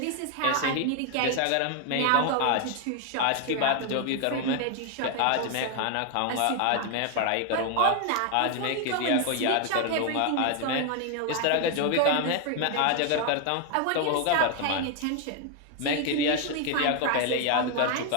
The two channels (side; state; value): both; different; correlation 0.01